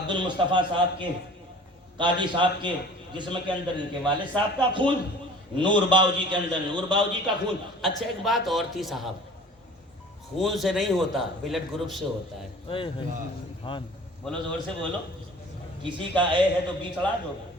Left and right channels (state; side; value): normal; both; correlation 0.46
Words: المصطفیٰ صاحب کے, قاضی صاحب کے جسم کے اندر ان کے والد صاحب کا خون, نور باؤجی کے اندر نور باؤجی کا خون. اچھا ایک بات اور تھی صاحب, خون سے نہیں ہوتا, بلڈ گروپ سے ہوتا ہے. بولو, زور سے بولو. کسی کا اے ہے تو بی چڑھا دو,